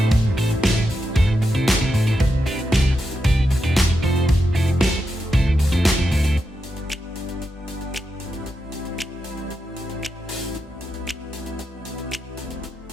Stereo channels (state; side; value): normal; both; correlation 0.86